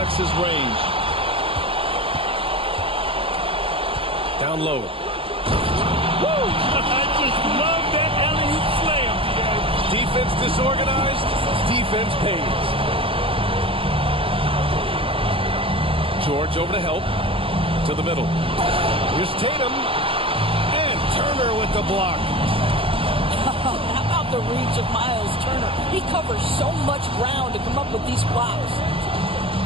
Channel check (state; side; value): late; left; 0.26 ms